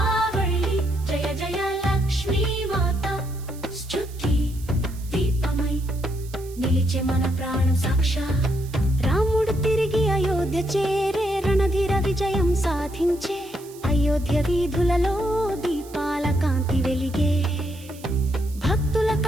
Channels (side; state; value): right; noise; hiss, 21 dB below the sound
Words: జయ జయ లక్ష్మీ మాత స్తుతి దీపమై నిలిచే మన ప్రాణం సాక్షా రాముడు తిరిగి అయోధ్య చేరే రణధీర విజయం సాధించే అయోధ్య వీధులలో దీపాల కాంతి వెలిగే భక్తుల